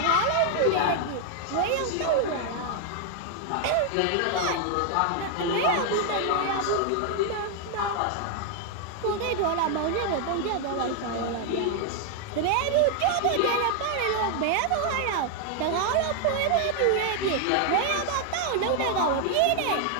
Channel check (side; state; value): both; different; correlation 0.00